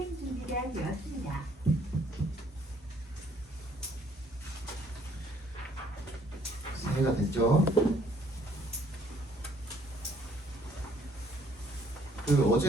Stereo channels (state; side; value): normal; both; correlation 0.63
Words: 준비가 되었습니다. 이해가 됐죠?